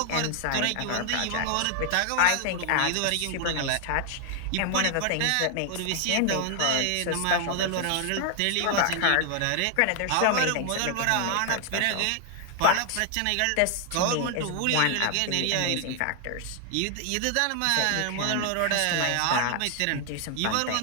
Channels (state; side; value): different; both; correlation 0.00